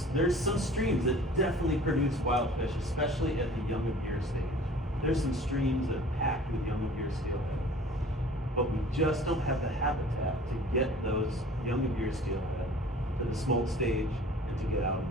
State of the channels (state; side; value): normal; both; correlation 0.47